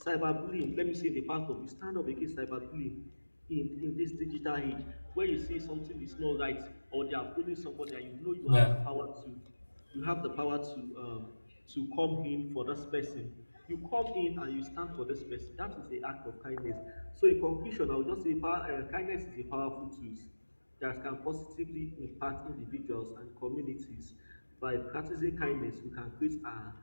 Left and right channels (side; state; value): both; inverted; correlation -1.00